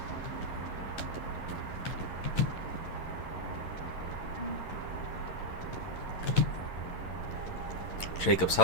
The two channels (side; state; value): right; late; 11 ms